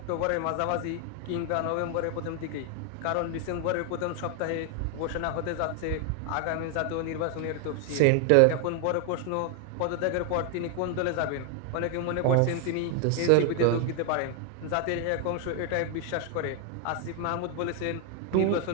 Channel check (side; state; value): both; different; correlation 0.00